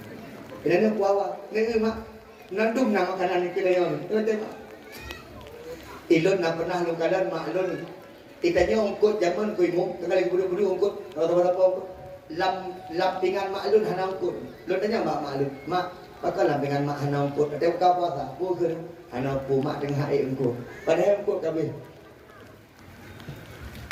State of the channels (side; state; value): both; identical; correlation 1.00